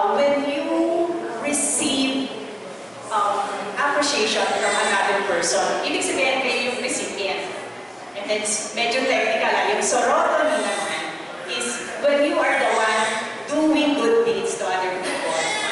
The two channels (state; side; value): identical; both; correlation 1.00